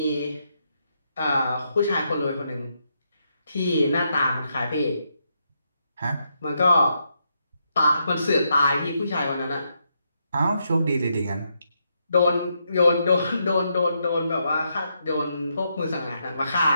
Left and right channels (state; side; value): inverted; both; correlation -0.80